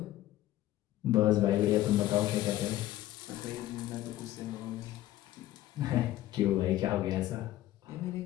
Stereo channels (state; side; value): quieter; right; 14.6 dB